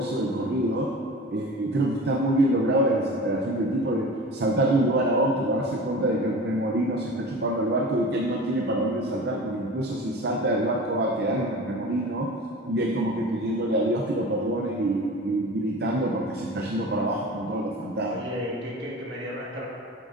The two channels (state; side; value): normal; both; correlation 0.36